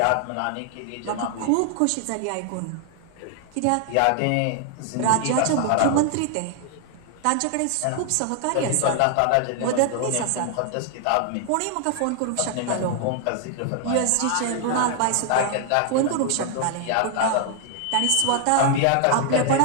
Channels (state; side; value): different; both; correlation 0.00